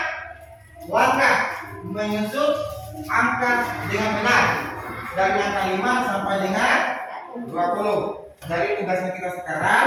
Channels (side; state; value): both; identical; correlation 1.00